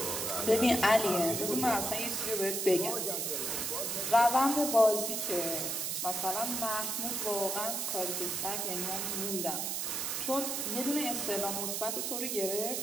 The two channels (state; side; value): noise; right; hiss, 1 dB below the sound